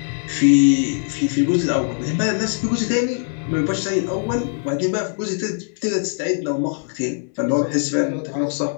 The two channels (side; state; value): right; silent; 61 dB below the other